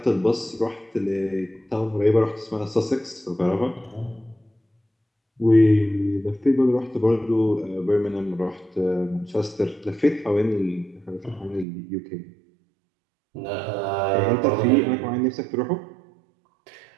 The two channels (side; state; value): left; drops out; at 11.7 s